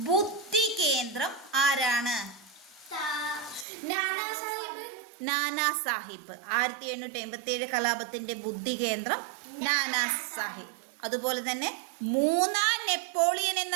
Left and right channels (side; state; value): left; drops out; at 3.7 s